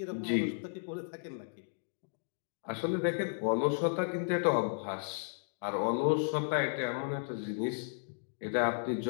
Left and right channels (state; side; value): silent; right; digital silence